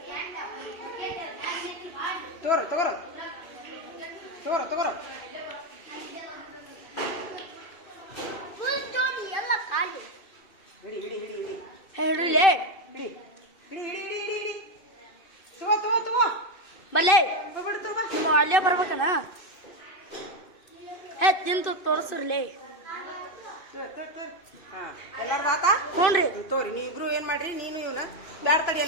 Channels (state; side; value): late; right; 2.6 ms